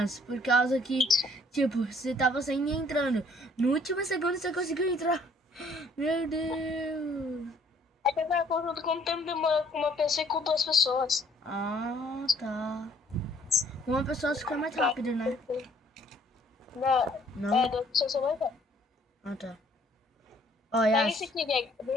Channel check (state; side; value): normal; both; correlation 0.61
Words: Por causa que, tipo, você tava saindo e entrando. No último segundo você conseguiu entrar. Meu Deus. é que eu tava contando quanto tempo demora com uma pessoa e com duas pessoas. Ah, tá. Uma pessoa fica mais Pra- rápido, né? Não, Não? duas pessoas são mais rápidas. Ah, tá. Ó, Pega esse Yas. aqui, Greg.